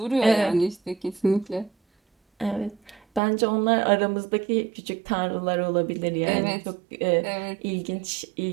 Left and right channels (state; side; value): drops out; left; at 3.2 s